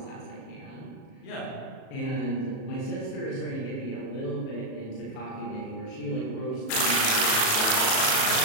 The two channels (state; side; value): late; right; 37 ms